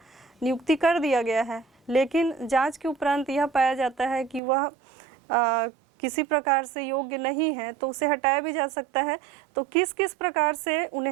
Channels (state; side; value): drops out; left; at 4.4 s